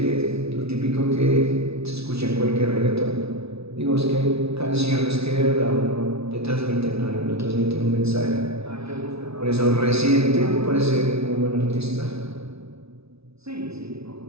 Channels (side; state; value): left; late; 0.79 ms